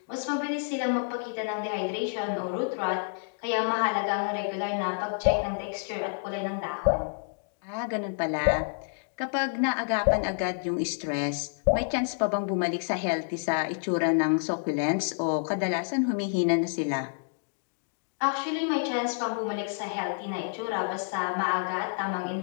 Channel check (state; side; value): silent; right; digital silence